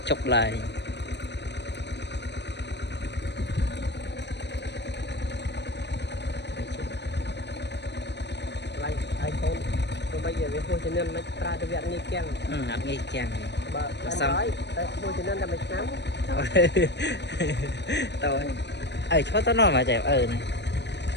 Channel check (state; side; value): late; right; 0.50 ms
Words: ចុកឡើយiPhone ទៅបីវាហួសជំនាញមិនប្រើទៅវាអត់ងាយគាំងអត់ងាយគាំងបើសំតែហួសជំនាញតែមួយឆ្នាំទៅឈប់ទៅនោះមកចេះនេះ